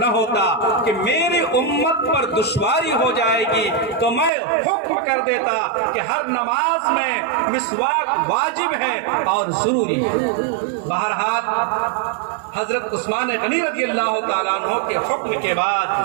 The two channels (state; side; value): drops out; left; at 4.3 s